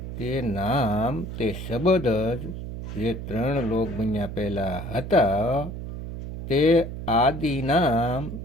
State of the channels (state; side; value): noise; right; hum, 8 dB below the sound